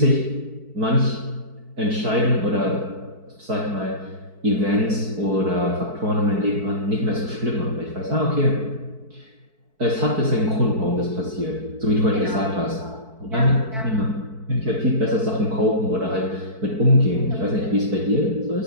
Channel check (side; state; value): left; late; 4.6 ms